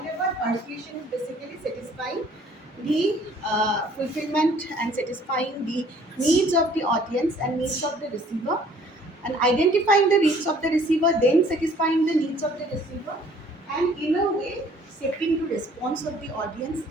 persuasion is basically satisfying the fulfillment and satisfying the needs of the audience and needs of the receiver, and identifying the needs of the receiver, then satisfying the needs of the receiver, and in a way shaping the response of the audience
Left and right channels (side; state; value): both; normal; correlation 0.57